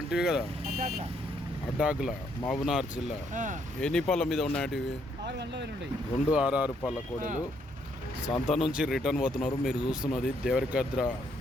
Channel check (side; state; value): both; normal; correlation 0.72